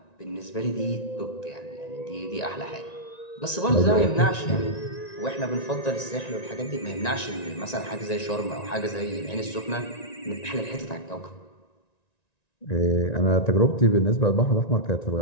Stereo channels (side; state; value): right; late; 1.9 ms